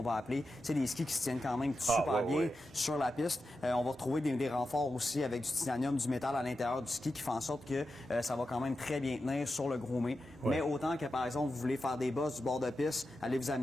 va appeler, c'est des skis qui se tiennent quand même super bien sur la piste. On va retrouver des renforts aussi avec du titanium, du métal à l'intérieur du ski qui fait en sorte que ça va quand même très bien tenir sur le grommet. Mais autant que par exemple vous voulez faire des bosses du bord de piste, allez vous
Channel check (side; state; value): both; normal; correlation 0.90